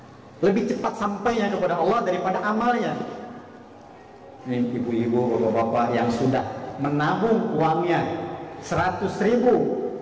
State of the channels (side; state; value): both; identical; correlation 1.00